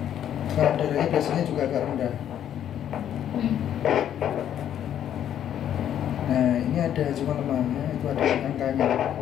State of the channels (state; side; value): quieter; right; 10.2 dB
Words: darahnya biasanya juga agak rendah. Nah, ini ada cuma lemahnya, itu ada angkanya.